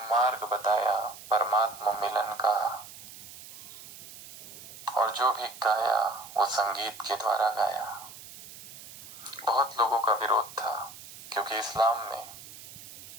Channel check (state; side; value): noise; right; hiss, 16 dB below the sound